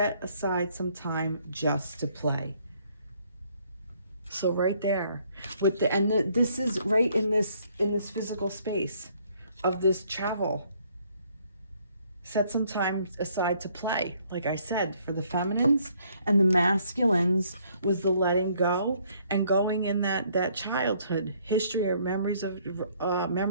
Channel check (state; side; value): inverted; both; correlation -0.65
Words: some time just to play. So right there with this is right in this physical space of this travel. Set some time aside to play. Like I said, for the feminines, and the masculines was the letting go and going in that childhood history or memories